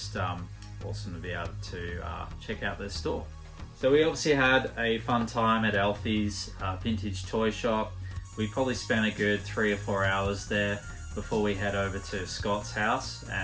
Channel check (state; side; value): identical; both; correlation 1.00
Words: awesome to be able to check out their store. So we obviously had a fun time at Alfie's vintage toy shop. We probably spent a good 3 or 4 hours there before we head over to Scott's house